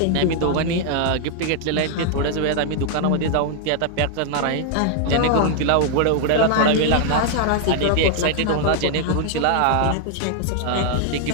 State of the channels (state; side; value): different; both; correlation 0.00